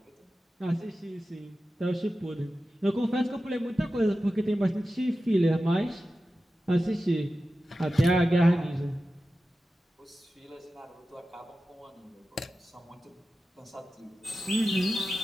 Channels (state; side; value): normal; both; correlation 0.93